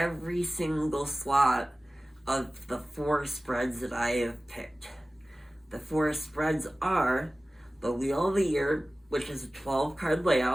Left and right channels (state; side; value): normal; both; correlation 0.97